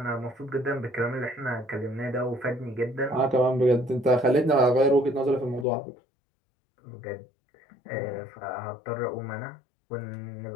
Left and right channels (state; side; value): drops out; right; at 5.7 s